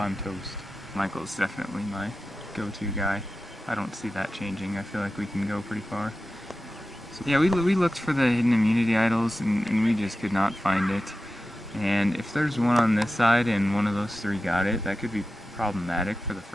toast. Michael's definitely my go-to guy. I don't see that changing. I feel like we can go pretty far. So yeah, we looked for the hidden immunity idols, and we just could not find it. And if there's one on this side and one of those three got it, that could be problematic for the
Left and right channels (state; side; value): normal; both; correlation 0.93